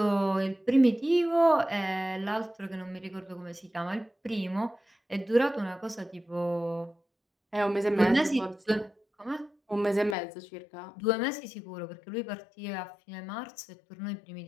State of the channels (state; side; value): drops out; right; at 10.2 s